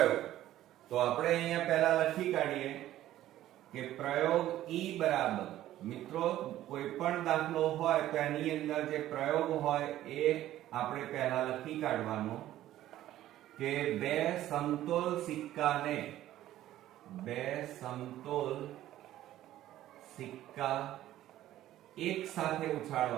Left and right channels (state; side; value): quieter; left; 13.6 dB